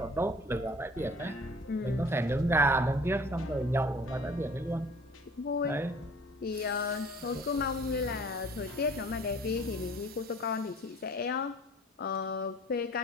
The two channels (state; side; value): normal; both; correlation 0.49